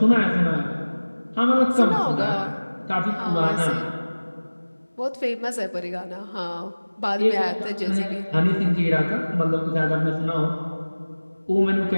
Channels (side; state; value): both; inverted; correlation -1.00